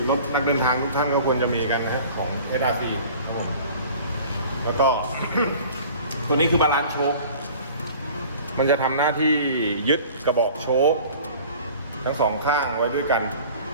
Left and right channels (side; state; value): both; inverted; correlation -0.45